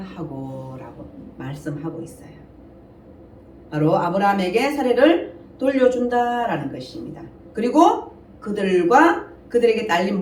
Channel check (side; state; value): both; identical; correlation 1.00